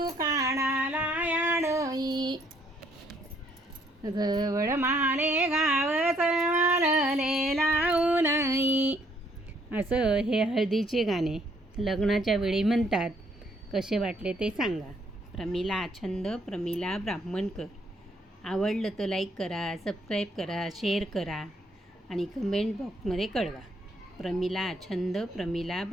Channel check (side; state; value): both; normal; correlation 0.68